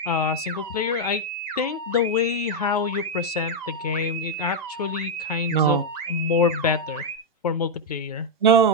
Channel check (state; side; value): normal; both; correlation -0.01